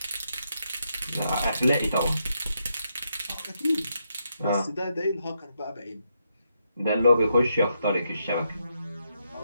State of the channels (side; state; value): both; inverted; correlation -0.80